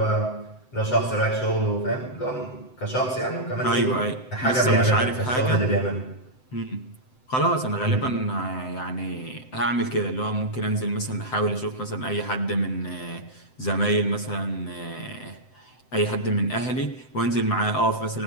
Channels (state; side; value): late; right; 7.8 ms